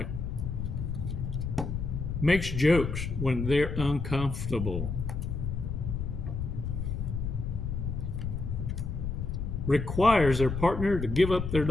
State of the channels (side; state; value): left; noise; rumble, 3 dB below the sound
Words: Makes jokes when they're uncomfortable. Requires their partner to give up their